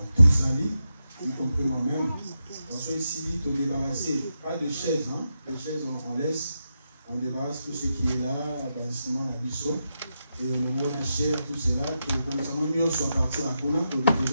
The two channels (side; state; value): both; inverted; correlation -0.86